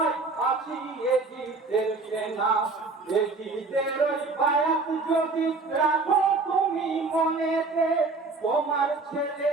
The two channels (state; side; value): quieter; left; 3.8 dB